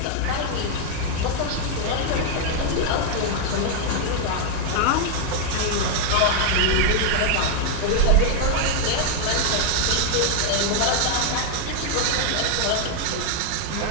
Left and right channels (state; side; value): different; both; correlation 0.00